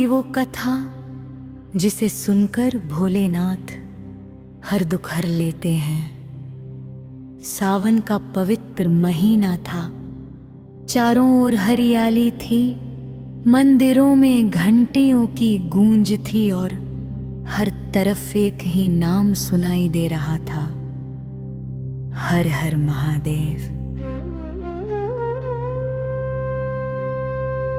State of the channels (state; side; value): identical; both; correlation 1.00